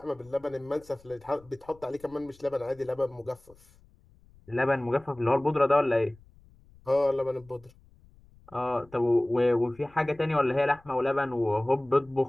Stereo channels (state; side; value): noise; left; rumble, 27 dB below the sound